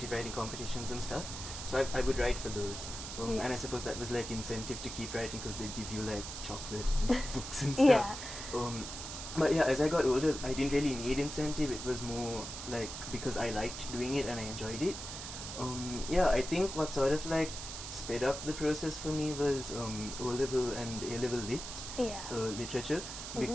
writing competitions and stuff. So I would write for those. And I suppose that was like incentive to keep writing because they'd give you like chocolate and books and stuff. But yeah, as I got older, I didn't really need incentive. It was more like because I liked doing it and I enjoyed it. Yeah, I think what sort of like sped up the process for me was O-level and A-level lit, literature,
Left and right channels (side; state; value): right; noise; hiss, 8 dB below the sound